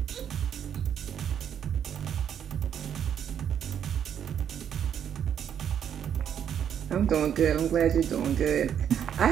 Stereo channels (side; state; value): left; quieter; 8.8 dB